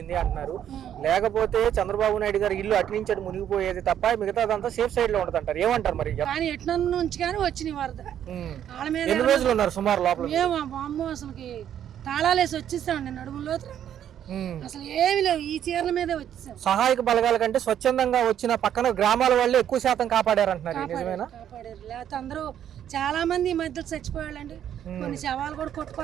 అంటున్నారు. లేకపోతే చంద్రబాబు నాయుడు గారు ఇల్లు అటు నుంచి అటు మునిగిపోయేది తప్ప మిగతాదంతా సేఫ్ సైడ్ లో ఉంటది అంటారు, ఏమంటారు మరి? కానీ ఎట్ల నుంచి కానీ వచ్చిన వరద వాళ్ళ మీద. ఎన్ని రోజులు ఉన్నారు సుమారు లోపల? అమ్మో అసలుకి తాళాలేసి వచ్చేసామండి, నడుములో అసలు ఏమి లేవు, ఈ చీరల మీదే వచ్చేసాం. సహాయక బలగాల కంటే స్వచ్ఛందంగా వచ్చిన పక్కన గ్రామాల వాళ్ళే ఎక్కువ శాతం కాపాడారు అంటున్నారు, నిజమేనా? కాపాడారు, లేకపోతే అందరూ చాలా మంది ఈ మధ్య చచ్చిపోయాళ్ళండి. కొన్ని శవాలు కూడా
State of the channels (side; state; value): left; quieter; 10.1 dB